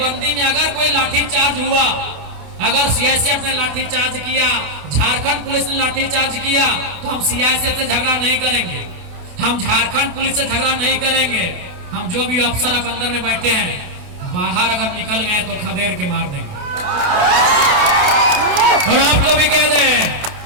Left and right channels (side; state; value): left; late; 28 ms